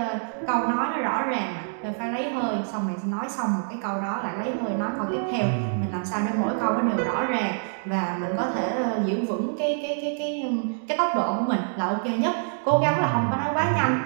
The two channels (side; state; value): left; silent; digital silence